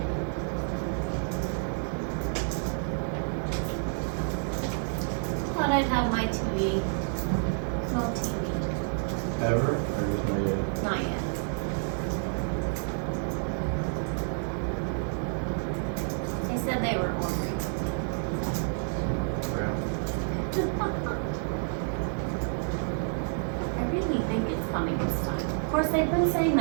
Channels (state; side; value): silent; left; 58 dB below the other